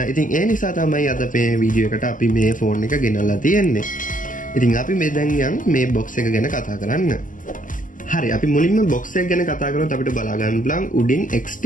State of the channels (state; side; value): late; right; 0.38 ms